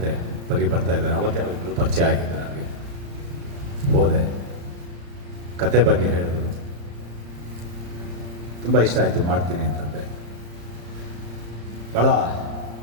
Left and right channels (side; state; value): left; late; 35 ms